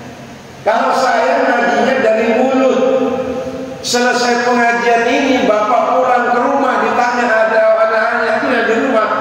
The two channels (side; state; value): both; identical; correlation 1.00